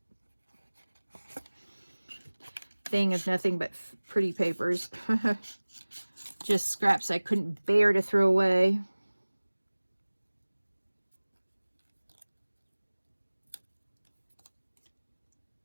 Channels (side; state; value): both; inverted; correlation -1.00